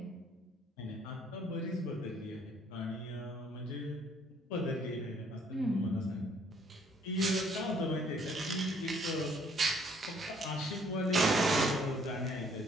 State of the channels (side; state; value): both; normal; correlation 0.63